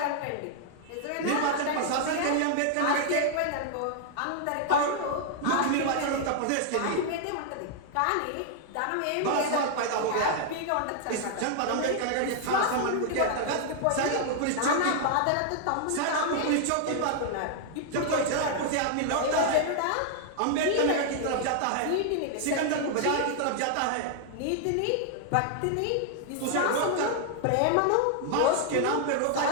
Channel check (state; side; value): different; both; correlation 0.00